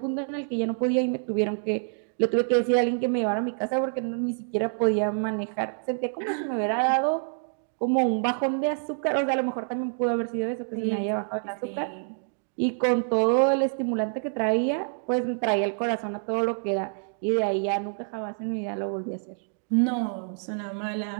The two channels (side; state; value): left; silent; digital silence